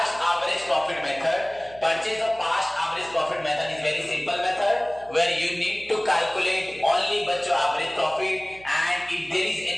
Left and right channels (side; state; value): right; noise; hum, 22 dB below the sound